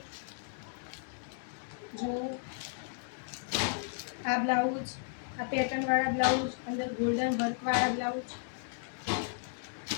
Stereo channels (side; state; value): right; silent; digital silence